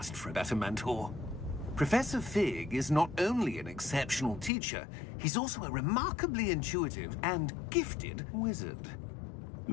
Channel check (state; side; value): drops out; right; at 4.5 s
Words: for a better mentor. Professor Fig is not only an exceptional teacher, he's also a remarkably intuitive and gifted wizard.